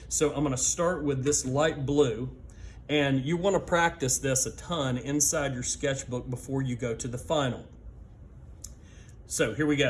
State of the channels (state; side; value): identical; both; correlation 1.00